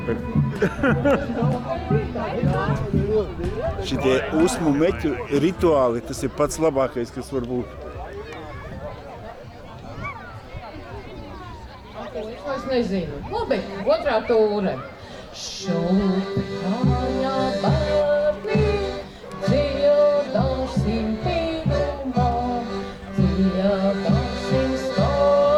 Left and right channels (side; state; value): both; identical; correlation 1.00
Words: Šitie usmu meķu rituāli, tas ir pats labākais, kas var būt. Es nezinu. Labi, otrā tūre. Šūpi kāja bērni, dziedāsim pīnumā, dziedāsim